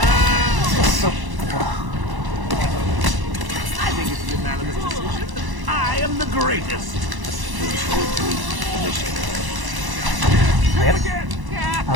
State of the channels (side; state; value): left; late; 1.0 ms